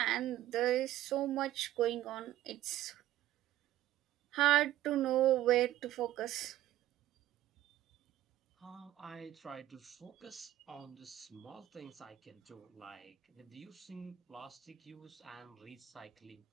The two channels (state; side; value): quieter; left; 13.8 dB